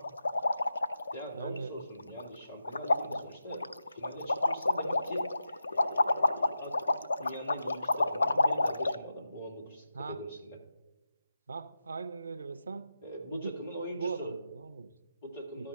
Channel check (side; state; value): both; inverted; correlation -0.88